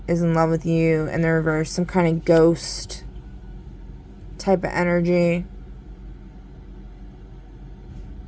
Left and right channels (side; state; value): both; identical; correlation 1.00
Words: is in love with you in the reverse. Some kind of ghost type of energy.